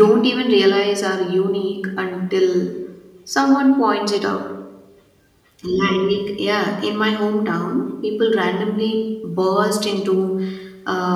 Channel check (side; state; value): both; identical; correlation 1.00